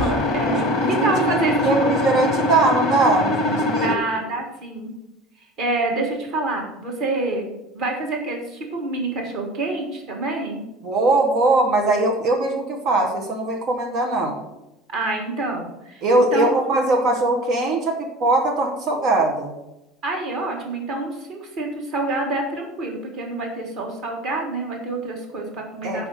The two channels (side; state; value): both; normal; correlation 0.40